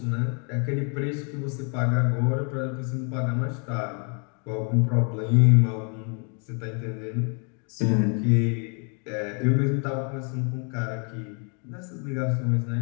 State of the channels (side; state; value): right; quieter; 39.1 dB